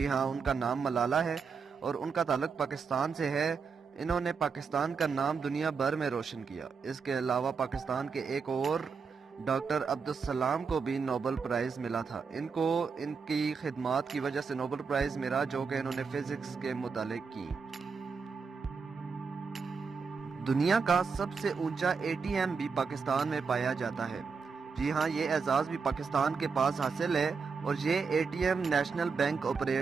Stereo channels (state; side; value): quieter; left; 5.4 dB